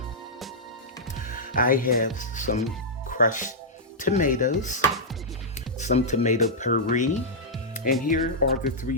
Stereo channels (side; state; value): both; normal; correlation -0.10